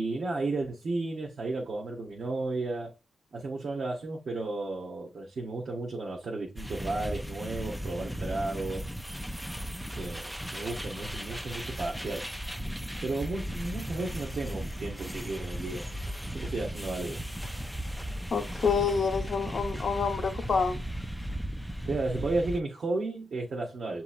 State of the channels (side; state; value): both; normal; correlation 0.83